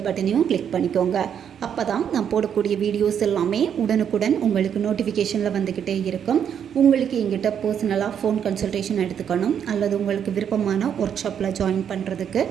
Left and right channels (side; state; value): left; quieter; 8.4 dB